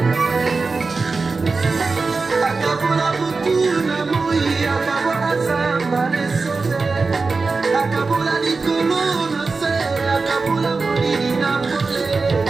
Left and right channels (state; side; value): quieter; left; 4.1 dB